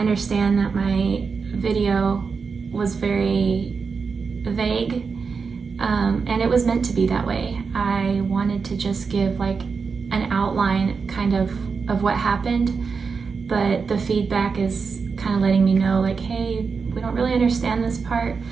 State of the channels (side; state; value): left; quieter; 5.2 dB